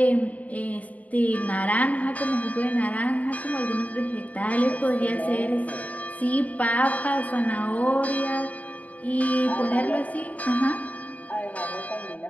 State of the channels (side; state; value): right; late; 0.071 ms